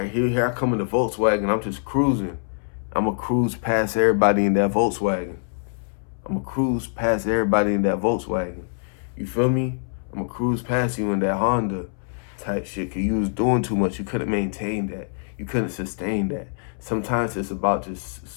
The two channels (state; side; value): silent; right; 62 dB below the other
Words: here I come in the Volkswagen. I'm just cruising. I'm going to cruise past everybody in that Volkswagen. You feel me? I'm going to cruise past you in that Honda type shit because you was doing too much. You couldn't maintain that. You couldn't sustain that. Sometimes it's about just